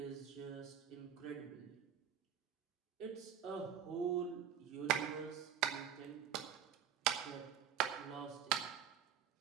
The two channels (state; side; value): quieter; left; 8.9 dB